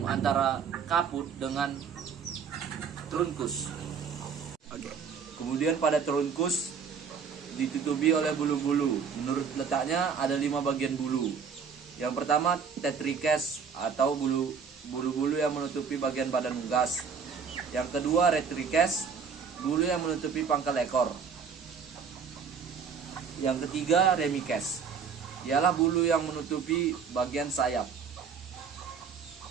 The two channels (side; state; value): left; quieter; 6.3 dB